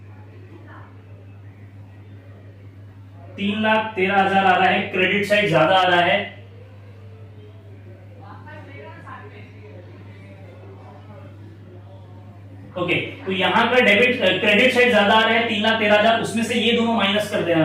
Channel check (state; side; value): identical; both; correlation 1.00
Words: $3,13,000 आ रहा है, क्रेडिट साइड ज्यादा आ रहा है। ओके, तो यहां का डेबिट क्रेडिट साइड ज्यादा आ रहा है 3,13,000, उसमें से ये दोनों माइनस कर देना